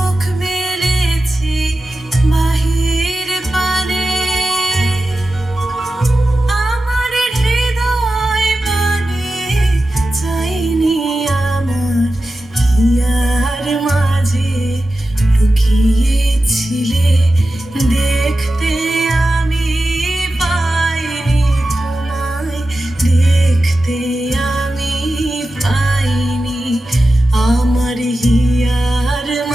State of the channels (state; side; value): normal; both; correlation 0.93